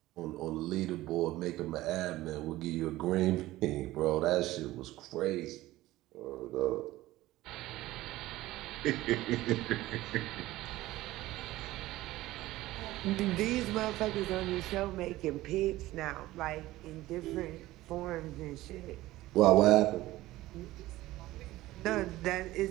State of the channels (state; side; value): quieter; left; 16.9 dB